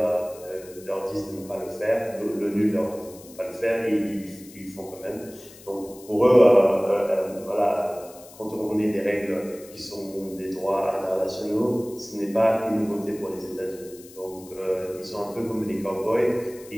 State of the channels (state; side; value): noise; left; hiss, 20 dB below the sound